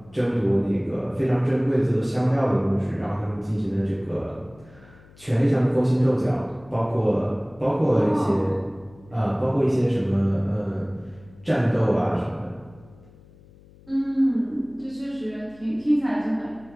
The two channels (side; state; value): left; noise; hum, 25 dB below the sound